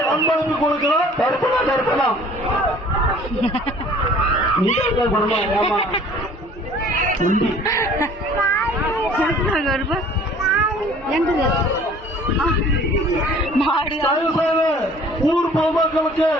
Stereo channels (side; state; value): both; normal; correlation 0.51